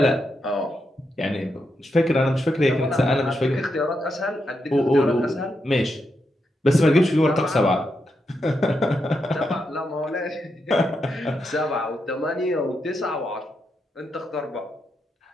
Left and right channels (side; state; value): both; normal; correlation 0.84